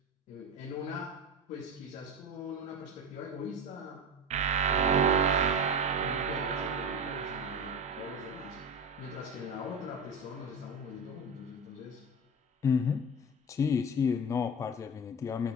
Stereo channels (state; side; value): normal; both; correlation 0.24